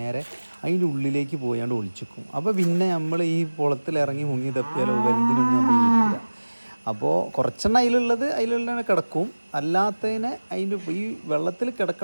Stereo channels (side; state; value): both; inverted; correlation -1.00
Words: അതിൻ്റെ ഉള്ളിലേക്ക് പോയാണ്ട് ഒളിച്ചിക്കും. അപ്പോൾ പിന്നെ നമ്മൾ ഈ കുളത്തിലിറങ്ങി മുങ്ങി തപ്പിയാലോ വലുതിനൊന്നും നമ്മൾ കിട്ടില്ല. അപ്പോൾ കുറച്ചെണ്ണം അതിലുള്ള കിടക്കും, അല്ലാത്തതിനെ അതിൻ്റെ ഈ വെള്ളത്തിൽ